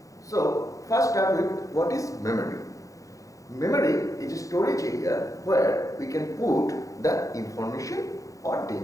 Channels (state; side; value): late; right; 0.16 ms